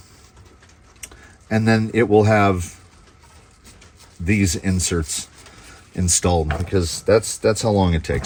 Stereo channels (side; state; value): both; identical; correlation 1.00